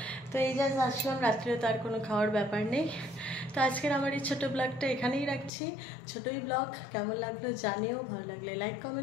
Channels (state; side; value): drops out; right; at 5.5 s